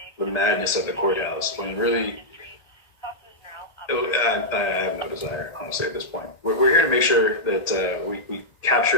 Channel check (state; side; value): late; right; 1.8 ms